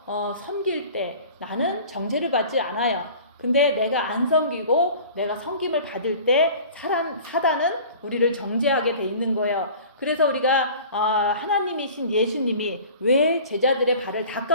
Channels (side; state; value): both; inverted; correlation -0.43